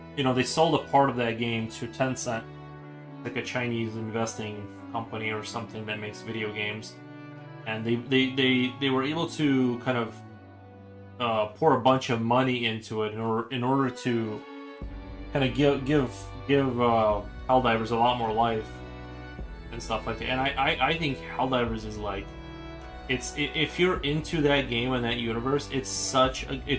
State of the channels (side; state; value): both; identical; correlation 1.00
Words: they sold a part of that game to Tencent, like a Chinese investing company or something that makes video games, and they were able to kind of pour a bunch of money into it in order to kind of give Helldivers a lot more life and stuff like that. And I think Helldivers is like, if you're into that game and that universe,